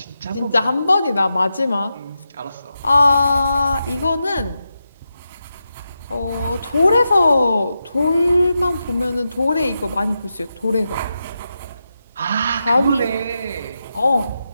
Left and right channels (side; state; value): both; inverted; correlation -0.88